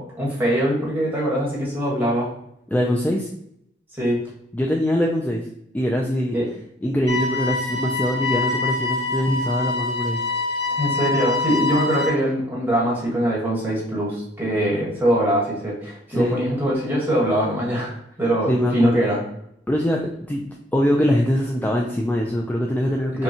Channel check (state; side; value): normal; both; correlation 0.62